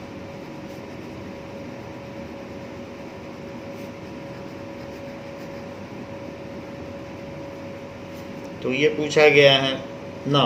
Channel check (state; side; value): identical; both; correlation 1.00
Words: तो ये पूछा गया है।